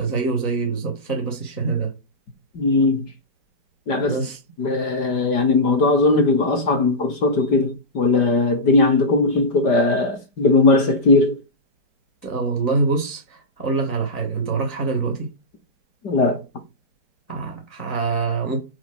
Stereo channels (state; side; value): late; right; 5.0 ms